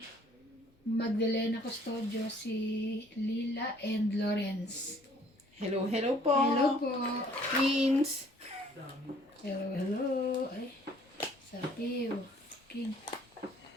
Magdalena Custodio, si Lila and Lawrence. Hello po. Hello po. Twins. Hello, hello. Ay, sabi, king.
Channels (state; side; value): normal; both; correlation 0.58